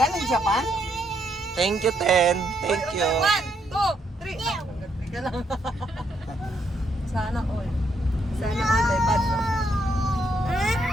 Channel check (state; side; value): normal; both; correlation 0.75